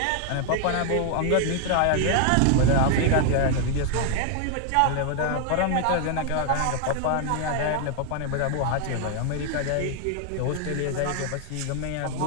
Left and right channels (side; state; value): both; different; correlation 0.00